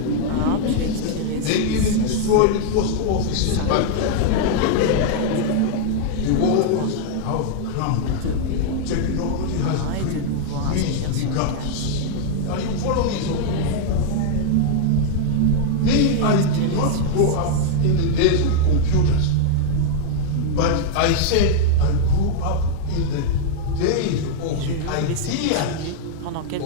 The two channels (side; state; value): both; different; correlation -0.01